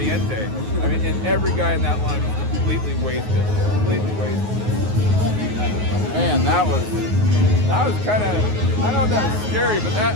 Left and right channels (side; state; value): left; late; 9.5 ms